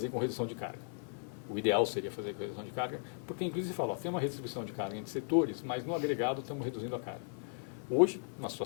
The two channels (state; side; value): silent; right; 54 dB below the other